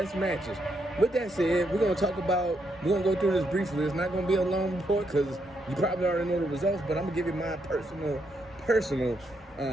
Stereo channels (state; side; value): normal; both; correlation 0.78